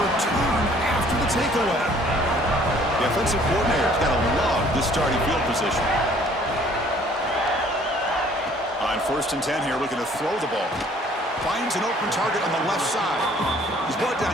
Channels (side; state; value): both; normal; correlation 0.57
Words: after the takeaway. The offensive coordinator's got to love this starting field position. On first and 10 here, looking to throw the ball. Finds an open target on the left side. He's brought down